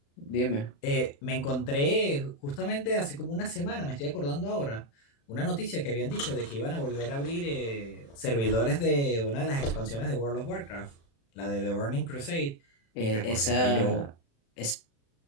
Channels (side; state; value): right; late; 36 ms